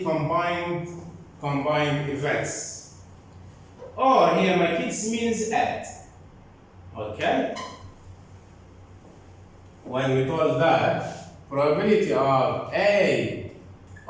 combined events. Or here my kids means add. Okay? When we told that probability of A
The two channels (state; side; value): identical; both; correlation 1.00